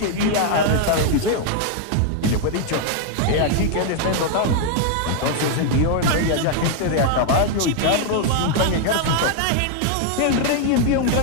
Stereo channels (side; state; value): both; different; correlation 0.00